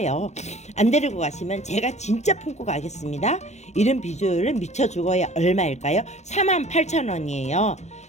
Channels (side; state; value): right; late; 0.33 ms